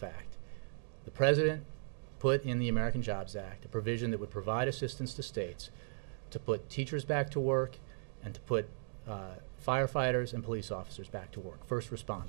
The president put in the American Jobs Act a provision that would provide assistance to states to put teachers back to work and to put firefighters and police officers back to work, first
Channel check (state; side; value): silent; left; digital silence